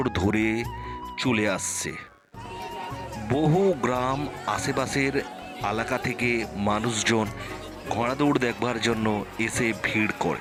ধরে চলে আসছে। বহু গ্রাম আশেপাশের এলাকা থেকে মানুষজন ঘোড়া দৌড় দেখবার জন্য এসে ভিড়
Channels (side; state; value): both; identical; correlation 1.00